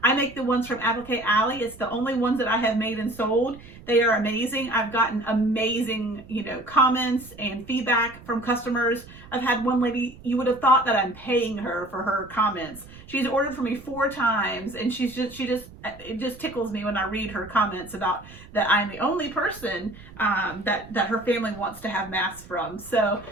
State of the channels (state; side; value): noise; right; rumble, 19 dB below the sound